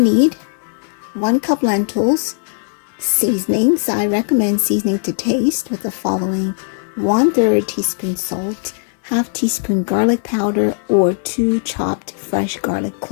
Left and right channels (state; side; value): silent; right; 62 dB below the other